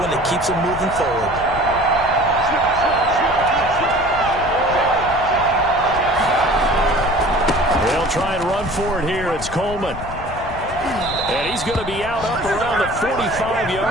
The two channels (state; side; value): noise; left; rumble, 11 dB below the sound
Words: that keeps them moving forward. They'll try and run for it here. It's Coleman. And he's going to be out up around the